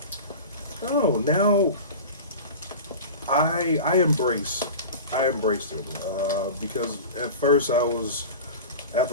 now I embraced it because at first I was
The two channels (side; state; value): both; inverted; correlation -0.32